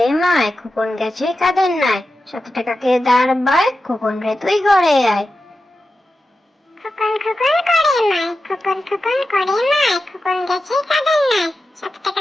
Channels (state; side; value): normal; both; correlation 0.91